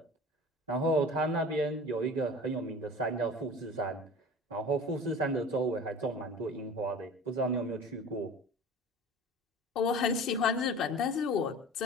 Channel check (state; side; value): normal; both; correlation 0.39